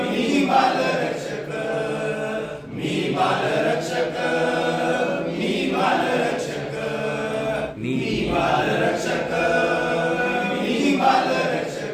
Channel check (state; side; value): identical; both; correlation 1.00